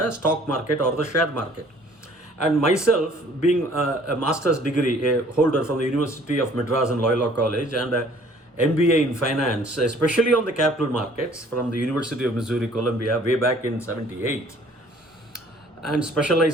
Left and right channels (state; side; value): normal; both; correlation 0.56